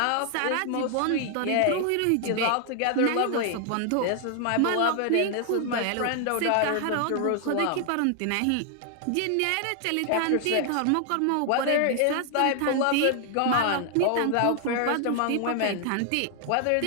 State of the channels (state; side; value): different; both; correlation 0.00